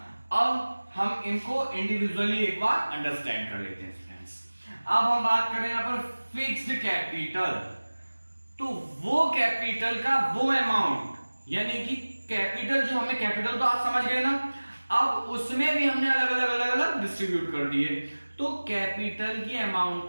अब हम इनको इंडिविजुअली एक बार अंडरस्टैंड कर लेते हैं फ्रेंड्स। अब हम बात करें यहां पर फिक्स्ड कैपिटल। तो वो कैपिटल का वो अमाउंट, यानी कि कैपिटल जो हमें, कैपिटल तो आप समझ गए ना, अब उसमें भी हमने अलग अलग डिस्ट्रीब्यूट कर दिए। तो कैपिटल की अमाउंट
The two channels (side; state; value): both; inverted; correlation -1.00